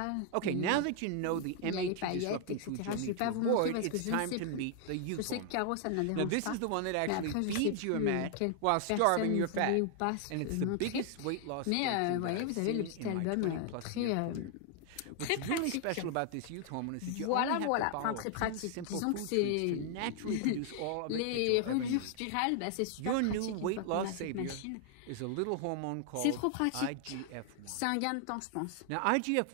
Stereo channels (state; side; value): different; both; correlation 0.00